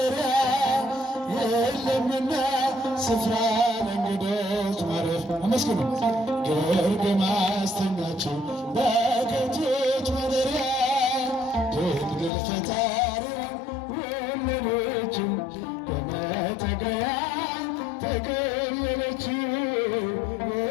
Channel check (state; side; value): drops out; right; at 12.3 s